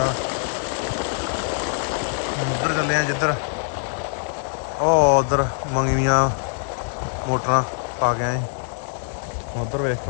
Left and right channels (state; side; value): silent; right; digital silence